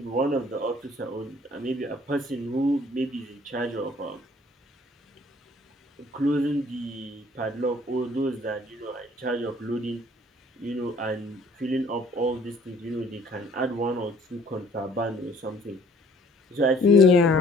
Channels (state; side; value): normal; both; correlation 0.57